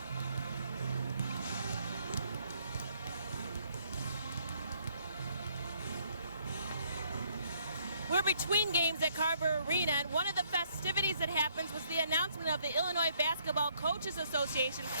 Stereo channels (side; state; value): both; inverted; correlation -0.68